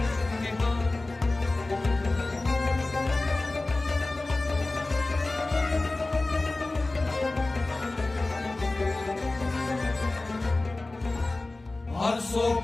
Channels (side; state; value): right; quieter; 3.1 dB